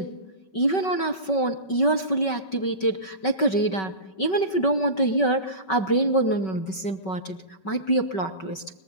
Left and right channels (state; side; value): late; right; 5.3 ms